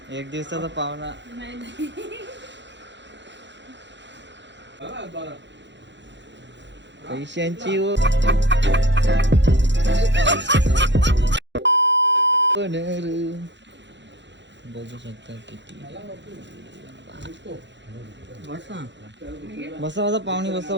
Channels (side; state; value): left; late; 0.52 ms